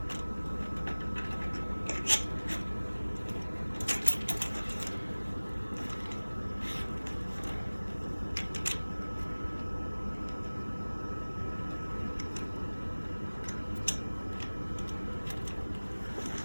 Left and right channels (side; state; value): both; inverted; correlation -1.00